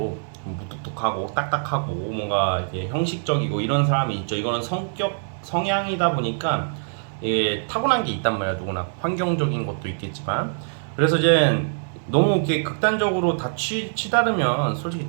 무뚝뚝하고 딱딱하고 뭔가 이게 형식적이고 이런 사람이 있죠. 이거는 성향이다 보니까 타고난 게 있단 말이야. 누구나 환경적인 것도 있겠지만 그래서 이제 너무 이렇게 극단적으로 다 치다르면 솔직히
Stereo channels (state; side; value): silent; left; digital silence